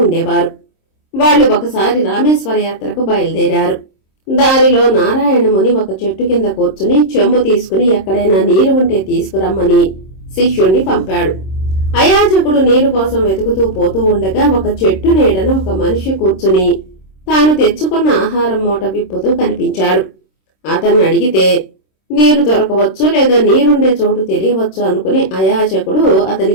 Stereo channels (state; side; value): late; right; 26 ms